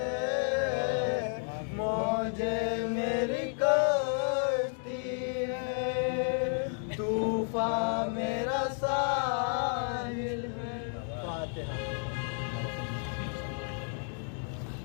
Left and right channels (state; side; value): silent; right; 57 dB below the other